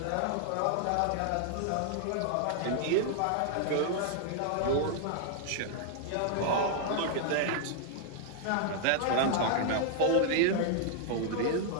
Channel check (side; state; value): both; different; correlation -0.01